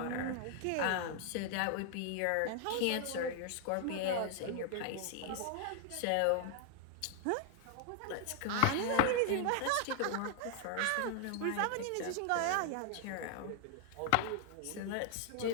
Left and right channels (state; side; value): different; both; correlation 0.00